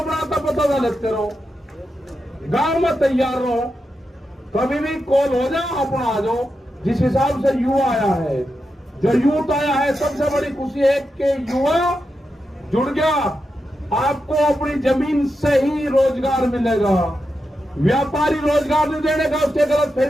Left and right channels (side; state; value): both; normal; correlation 0.88